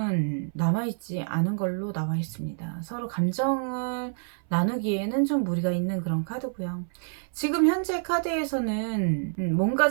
남아있지 않은 걸로 나와 있습니다. 서로 감정을 나누기에는 좀 무리가 있는 그런 카드고요. 지금 현재 카드에서는 뭔가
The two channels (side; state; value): left; silent; 58 dB below the other